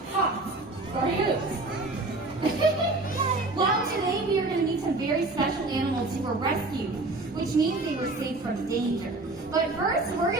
hops or hooves? Well, today we are going to meet some very special animals who were rescued, which means they were saved from danger. But first, we're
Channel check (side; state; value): left; quieter; 3.0 dB